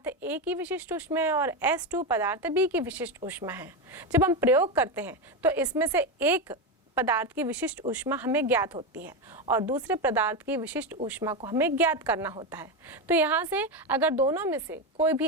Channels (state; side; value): normal; both; correlation 0.13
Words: A की विशिष्ट ऊष्मा है और S2 पदार्थ B की विशिष्ट ऊष्मा है। जब हम प्रयोग करते हैं तो इसमें से एक पदार्थ की विशिष्ट ऊष्मा हमें ज्ञात होती है और दूसरे पदार्थ की विशिष्ट ऊष्मा को हमें ज्ञात करना होता है। तो यहाँ से अगर दोनों में से कोई भी